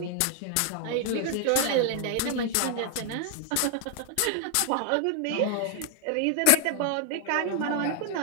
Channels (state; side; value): different; both; correlation -0.01